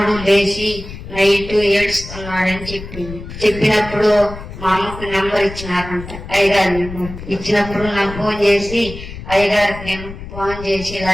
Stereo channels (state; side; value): noise; left; rumble, 12 dB below the sound